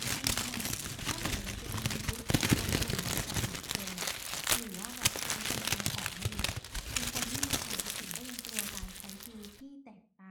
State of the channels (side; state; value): both; identical; correlation 1.00